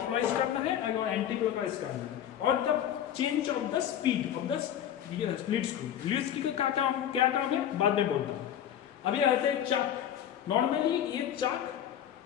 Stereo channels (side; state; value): right; quieter; 10.2 dB